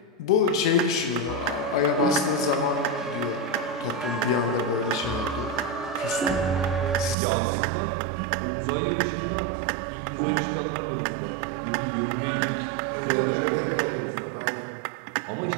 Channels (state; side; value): drops out; left; at 7.2 s